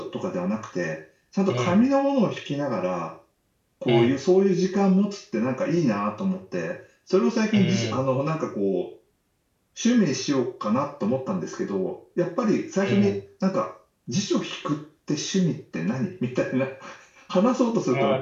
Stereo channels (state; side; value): identical; both; correlation 1.00